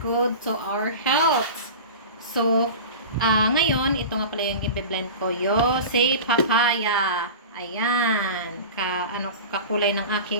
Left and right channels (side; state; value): both; inverted; correlation -0.31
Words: good to our health. So, ngayon, ito nga pala yung i-blend ko. Si papaya. Ayan. Kakulay ng